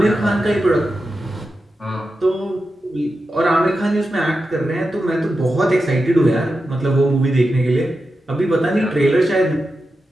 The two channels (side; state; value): both; normal; correlation 0.90